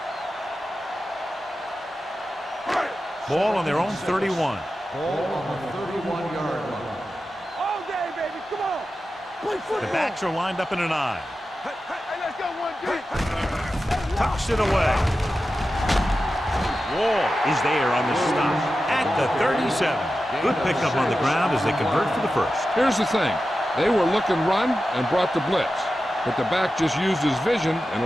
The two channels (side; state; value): both; normal; correlation 0.92